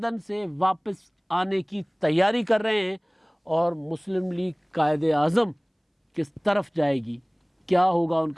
سے واپس آنے کی تیاری کر رہے ہیں۔ اور مسلم لیگ قائد اعظم کس طرف جائے گی، کیا ہوگا ان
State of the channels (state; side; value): identical; both; correlation 1.00